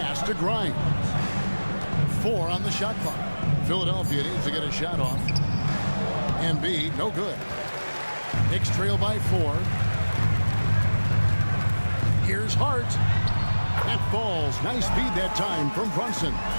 to Grimes. 4 on the shot clock. Philadelphia needs to get a shot off. Embiid, no good. Knicks trail by 4. Here's Hart. That falls. Nice feed that time from Brunson.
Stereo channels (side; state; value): both; inverted; correlation -1.00